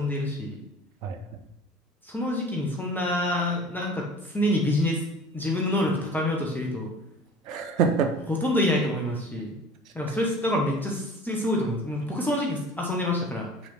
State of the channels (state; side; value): normal; both; correlation 0.43